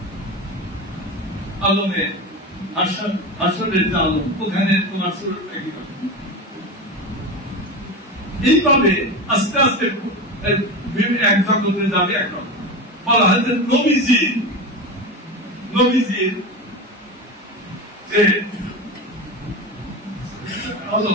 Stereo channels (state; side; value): normal; both; correlation 0.23